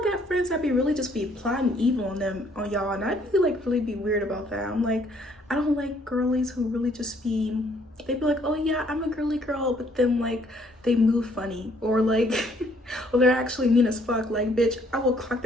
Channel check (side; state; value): both; normal; correlation 0.64